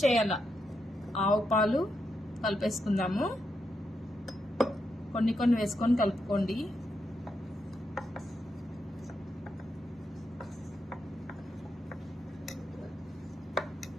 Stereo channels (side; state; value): both; normal; correlation 0.83